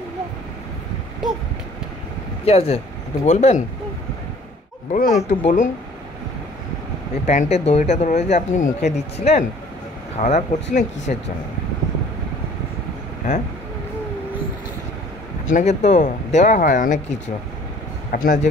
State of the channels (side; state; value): both; normal; correlation 0.53